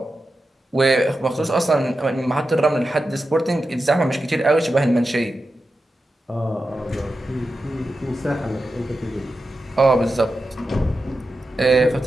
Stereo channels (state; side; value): normal; both; correlation 0.90